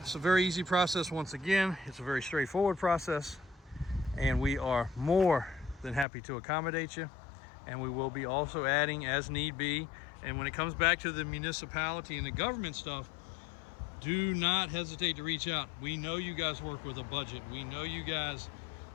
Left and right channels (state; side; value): drops out; right; at 6.1 s